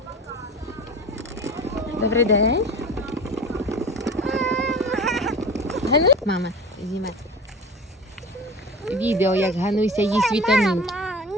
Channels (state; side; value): normal; both; correlation 0.36